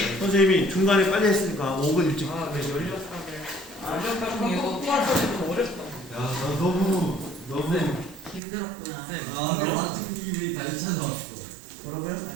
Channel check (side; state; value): left; drops out; at 8.4 s